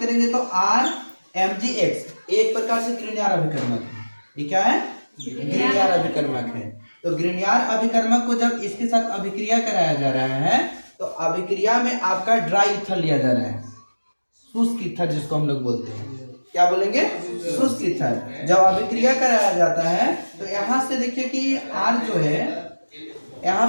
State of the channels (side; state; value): both; inverted; correlation -1.00